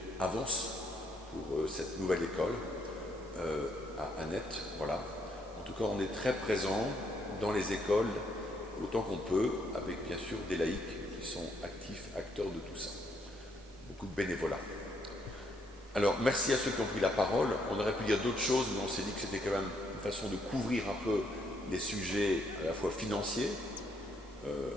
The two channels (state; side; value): normal; both; correlation 0.73